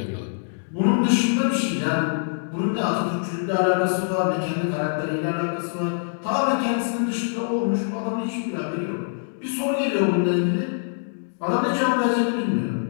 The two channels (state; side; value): silent; right; 63 dB below the other